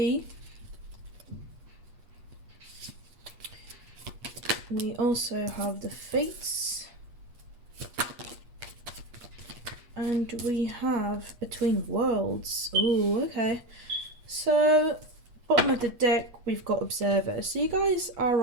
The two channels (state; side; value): late; left; 8.3 ms